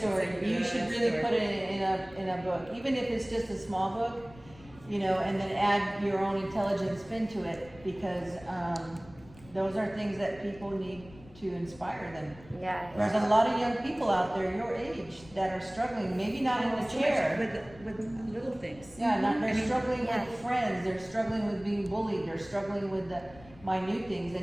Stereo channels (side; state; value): left; noise; rumble, 21 dB below the sound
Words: You Good should really story. put it in a book, even if it's just a small book, and then add your own intelligent spin to it, because those are things that people need to inspire them. Yeah. There's a lot of young people out there your age that are struggling, maybe not in the chair. With little things. Yeah, they're I mean, struggling yeah. with friends, they're struggling with being bullied, they're struggling with the minute things.